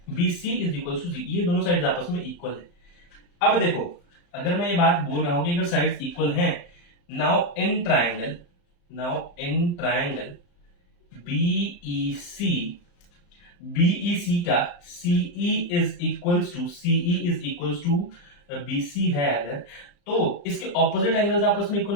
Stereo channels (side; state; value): right; late; 35 ms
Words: BC is equals to CE, ये दोनों साइड्स आपस में इक्वल है। अब देखो अगर मैं ये बात बोल रहा हूं कि अगर साइड्स इक्वल हैं, नाउ इन ट्राइंगल BEC का CE is equals to BC है अगर, तो इसके ऑपोजिट एंगल्स आपस में इक्वल